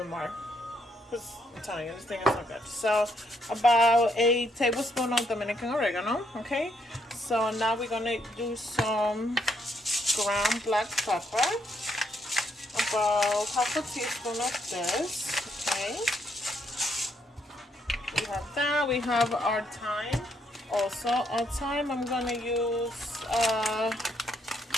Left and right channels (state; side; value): normal; both; correlation 0.74